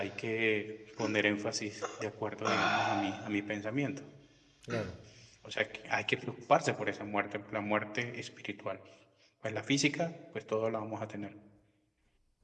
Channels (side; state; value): both; identical; correlation 1.00